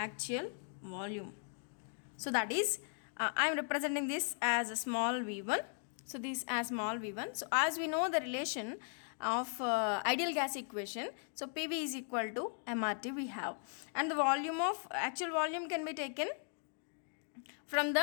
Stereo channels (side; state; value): right; silent; 53 dB below the other